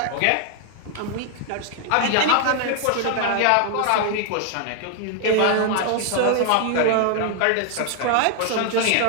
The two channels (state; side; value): different; both; correlation 0.00